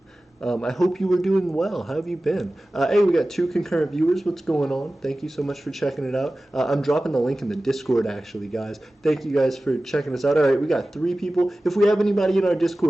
I hope you were doing well. How have you been? Hey, we got 2 concurrent viewers. What's going on? Thank you so much for checking it out. I'm dropping the link in the Discord, actually, guys. Thank you guys for checking us out. All right, we got 3 people. If we have anybody in our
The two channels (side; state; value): both; normal; correlation 0.96